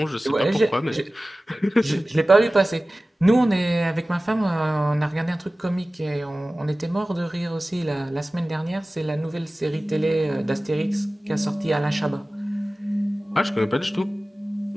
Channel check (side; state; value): both; normal; correlation 0.97